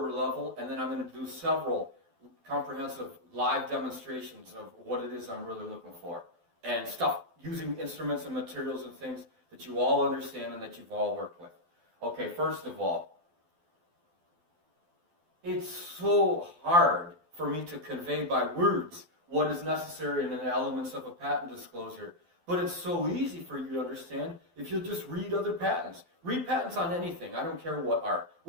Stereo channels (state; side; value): late; left; 12 ms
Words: level, and then I'm going to do several comprehensive live demonstrations of what it is I'm really looking for. And stuff using instruments and materials and things that you all understand and that you've all worked with. Okay, first of all, it's so hard for me to convey by words what is necessary in the elements of a patent disclosure. But it's so easy for you to understand if you'll just read other patents. Read patents on anything. I don't care what are.